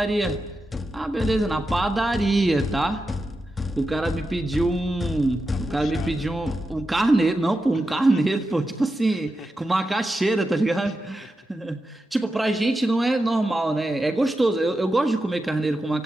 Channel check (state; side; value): normal; both; correlation 0.89